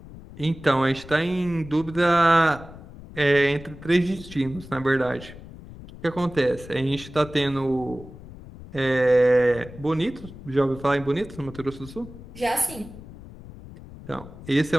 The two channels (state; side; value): noise; left; rumble, 16 dB below the sound